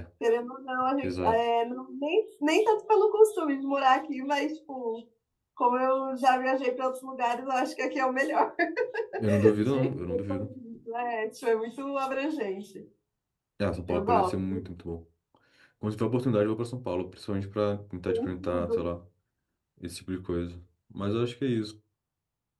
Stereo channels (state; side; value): identical; both; correlation 1.00